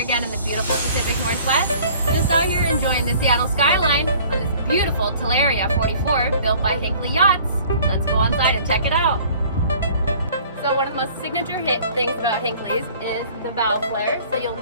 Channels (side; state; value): both; inverted; correlation -0.51